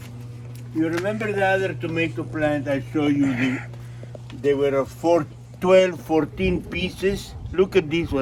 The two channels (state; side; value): identical; both; correlation 1.00